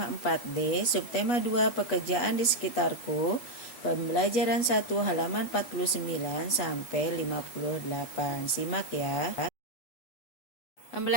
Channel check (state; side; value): late; right; 8.2 ms